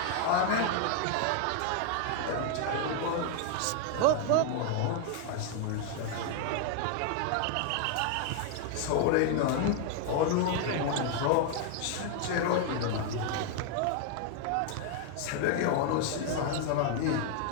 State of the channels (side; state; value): both; different; correlation 0.00